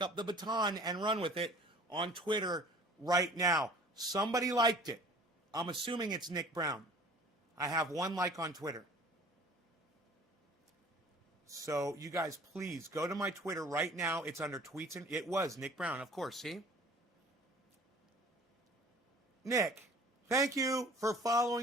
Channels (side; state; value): both; normal; correlation 0.48